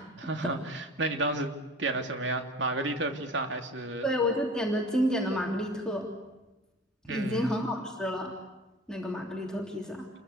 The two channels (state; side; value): normal; both; correlation 0.41